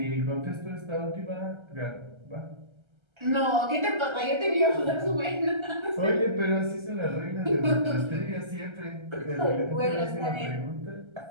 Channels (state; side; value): late; left; 1.3 ms